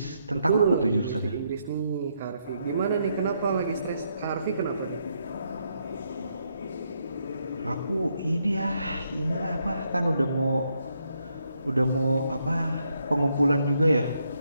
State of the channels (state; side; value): inverted; both; correlation -0.77